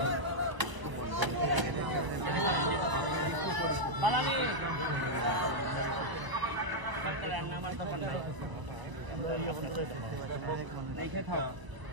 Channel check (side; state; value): left; late; 1.0 ms